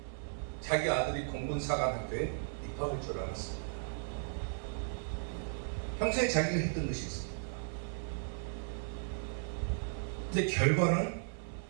자기 아들이 공군사관학교에 입학할 줄 알았습니다. 평소에 자기가 했던 것이 있습니다. 근데 결과는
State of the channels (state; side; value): silent; left; 54 dB below the other